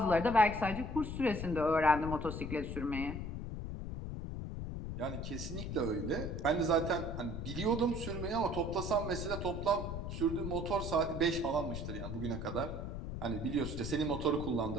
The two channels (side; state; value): left; noise; rumble, 5 dB below the sound